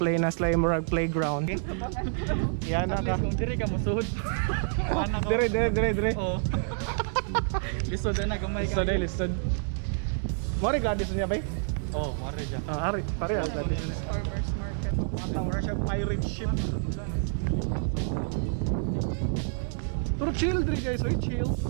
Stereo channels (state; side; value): silent; left; 58 dB below the other